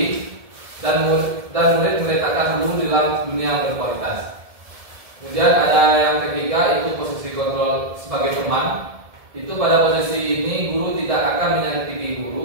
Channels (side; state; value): left; late; 1.7 ms